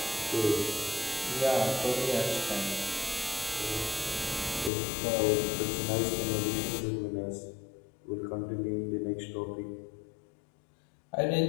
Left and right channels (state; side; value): drops out; right; at 4.7 s